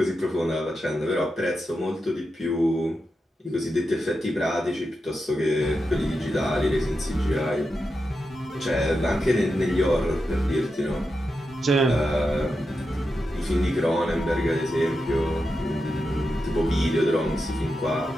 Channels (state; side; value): normal; both; correlation 0.88